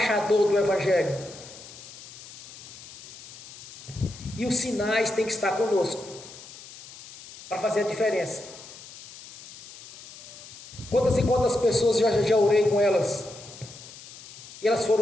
do Evangelho, e os sinais têm que estar conosco, para fazer a diferença. Quantas e quantas pessoas já orei com elas, e elas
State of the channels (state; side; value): noise; left; hiss, 17 dB below the sound